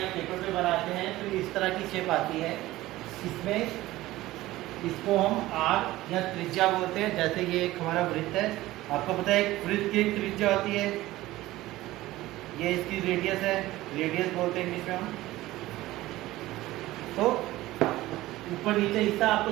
पेपर पे बनाते हैं तो इस तरह की शेप आती है। इसमें इसको हम आर्क या त्रिज्या बोलते हैं। जैसे ये एक हमारा वृत्त है, आपको पता है एक वृत्त की एक त्रिज्या होती है, ये इसकी रेडियस है, रेडियस बोलते हैं इंग्लिश में हम। तो ऊपर नीचे हिस्सा आपको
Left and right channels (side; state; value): left; quieter; 17.0 dB